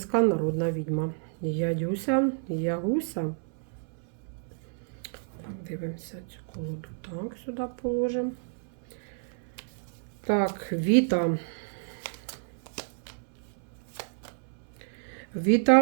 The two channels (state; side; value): silent; left; 58 dB below the other